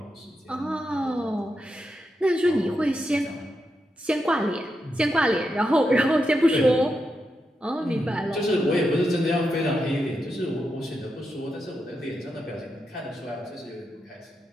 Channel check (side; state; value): both; normal; correlation 0.86